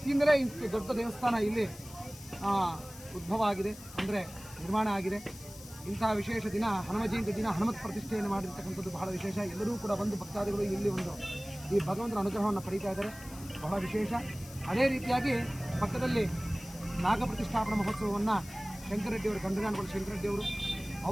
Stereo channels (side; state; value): left; noise; hiss, 17 dB below the sound